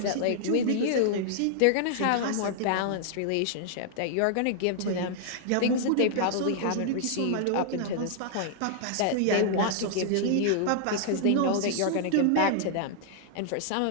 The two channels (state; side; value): different; both; correlation -0.01